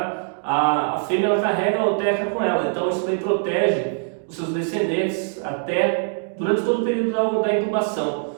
A fêmea ela carrega a oteca com ela, então isso daí protege os seus descendentes até durante todo o período da incubação.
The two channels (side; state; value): left; silent; digital silence